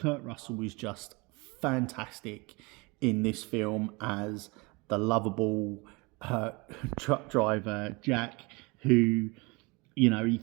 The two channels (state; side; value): quieter; left; 26.7 dB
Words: Russell is just fantastic in this film as the lovable truck driver, Jack, who, you know, he